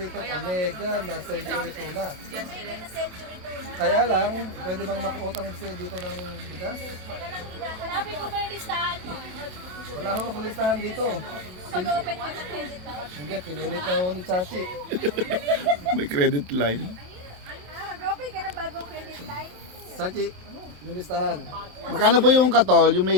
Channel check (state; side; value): late; left; 27 ms